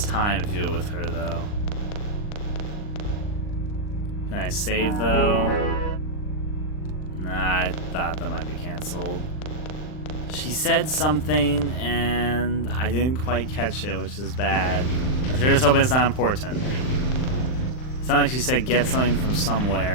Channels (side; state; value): right; late; 39 ms